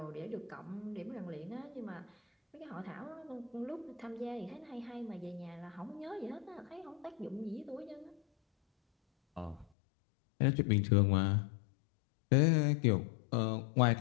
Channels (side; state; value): right; drops out; at 9.7 s